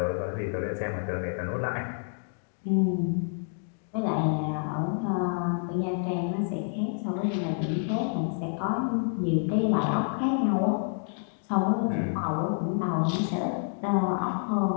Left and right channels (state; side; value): silent; right; 59 dB below the other